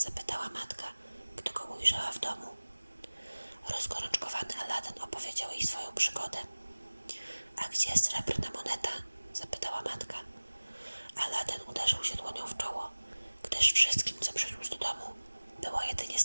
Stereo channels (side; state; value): both; inverted; correlation -1.00